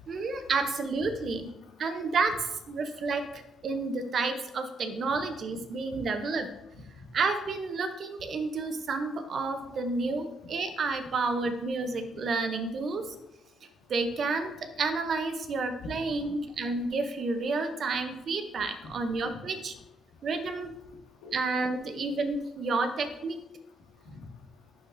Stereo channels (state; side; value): quieter; left; 3.3 dB